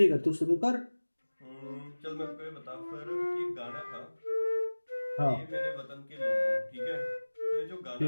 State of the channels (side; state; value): both; inverted; correlation -1.00